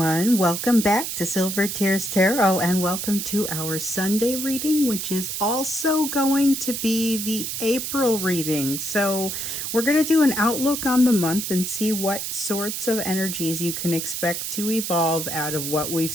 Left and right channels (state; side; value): noise; right; hiss, 4 dB below the sound